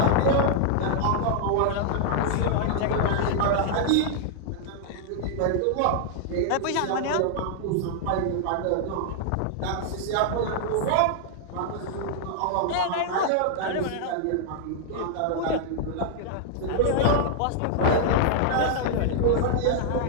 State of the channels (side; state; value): both; different; correlation -0.01